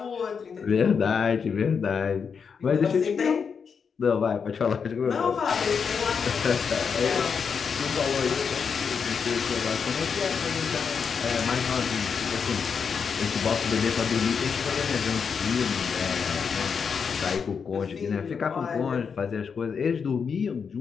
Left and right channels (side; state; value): right; quieter; 6.2 dB